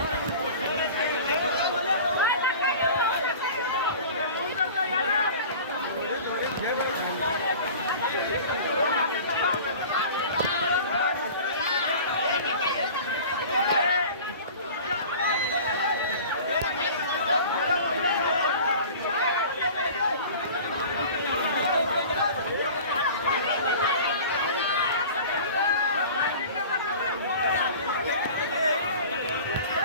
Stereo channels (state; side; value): inverted; both; correlation -0.40